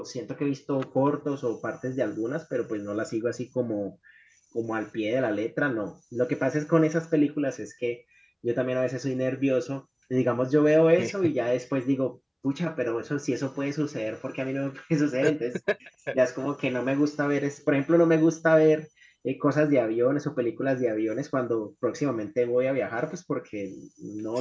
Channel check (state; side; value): identical; both; correlation 1.00